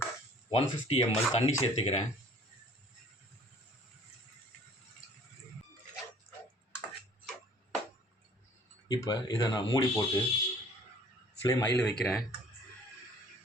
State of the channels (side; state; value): both; normal; correlation 0.53